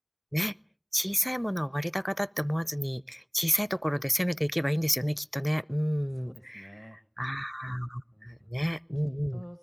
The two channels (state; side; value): identical; both; correlation 1.00